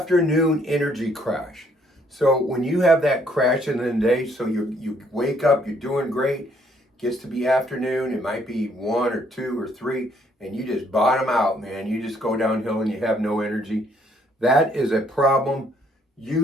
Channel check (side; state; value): both; normal; correlation 0.66